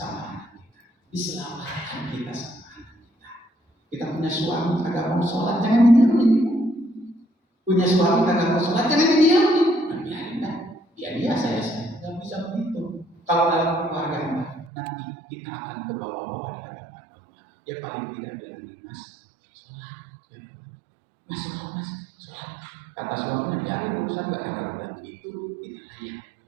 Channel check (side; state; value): left; drops out; at 14.7 s